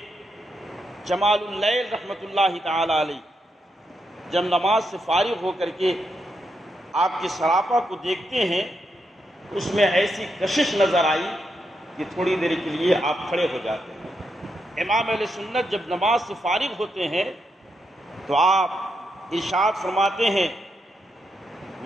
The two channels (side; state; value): both; normal; correlation 0.82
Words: جمال اللیل رحمت اللہ تعالی علیہ جب نماز سے فارغ ہو کر کے آپ کے سراپا کو دیکھتے ہیں، اس میں ایسی کشش نظر آئی کہ تھوڑی دیر کے لیے آپ کھڑے ہو جاتے ہیں۔ امام اہل سنت جب نماز سے فارغ ہوتے ہیں تو آپ ارشاد فرماتے ہیں